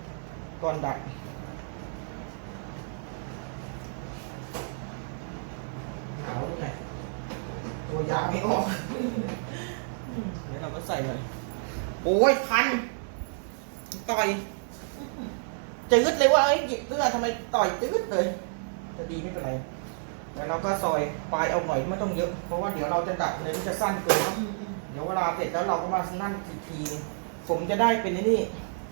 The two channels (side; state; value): left; silent; 58 dB below the other